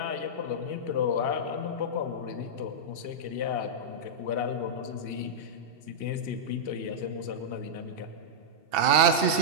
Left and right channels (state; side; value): late; left; 2.7 ms